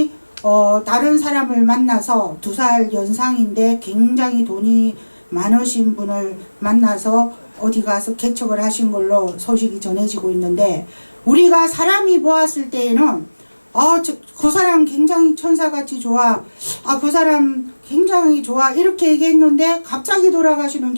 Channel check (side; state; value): both; inverted; correlation -1.00